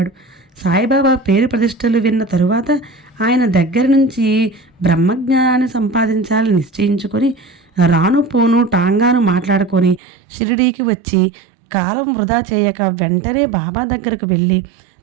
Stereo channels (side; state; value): left; drops out; at 10.0 s